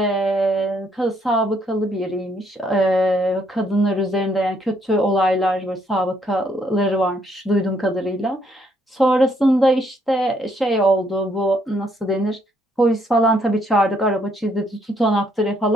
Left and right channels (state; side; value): normal; both; correlation 0.70